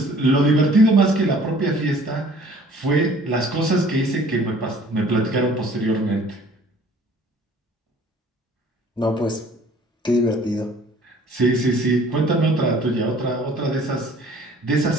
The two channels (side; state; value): both; normal; correlation 0.53